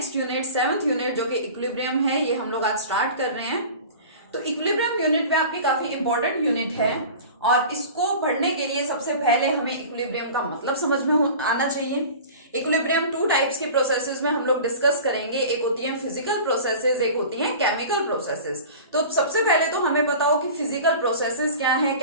unit 7th unit जो कि equilibrium है, ये हम लोग आज start कर रहे हैं. तो इक्विलिब्रियम यूनिट में आपकी काफी इंपॉर्टेंट यूनिट है और इसको पढ़ने के लिए सबसे पहले हमें इक्विलिब्रियम का मतलब समझ में आना चाहिए. इक्विलिब्रियम टू टाइप्स की प्रोसेसेस में हम लोग डिस्कस करेंगे. एक होती है फिजिकल प्रोसेसेस, एक होती है केमिकल प्रोसेसेस. तो सबसे पहले तो हमें बताओ कि फिजिकल प्रोसेसेस क्या है,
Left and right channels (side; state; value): both; inverted; correlation -0.38